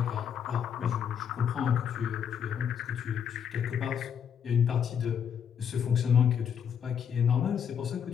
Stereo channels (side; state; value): right; quieter; 8.0 dB